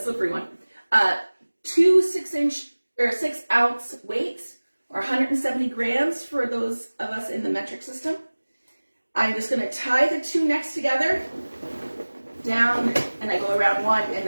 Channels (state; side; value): inverted; both; correlation -1.00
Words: one. 2 6-ounce weights, or 170 grams for those of us in the metric system. I'm just going to tie the two next together, down, and I go around one, and